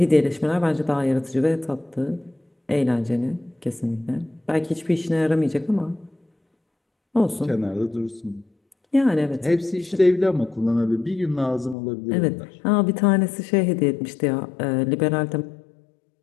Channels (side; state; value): right; drops out; at 11.8 s